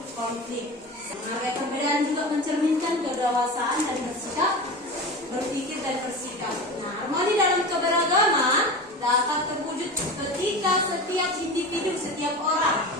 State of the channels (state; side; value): normal; both; correlation 0.29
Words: konflik. Menghargai perbedaan juga mencerminkan kedewasaan dan berpikir dan bersikap. Nah, harmoni dalam keberagaman dapat terwujud ketika setiap individu, setiap orang